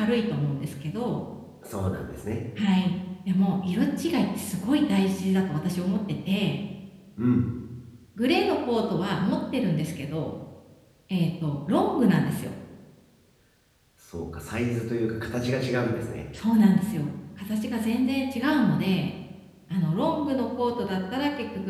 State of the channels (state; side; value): identical; both; correlation 1.00